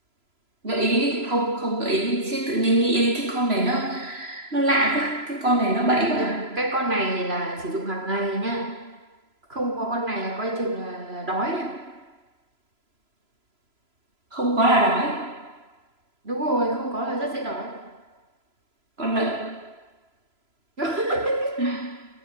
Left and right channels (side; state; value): left; late; 3.0 ms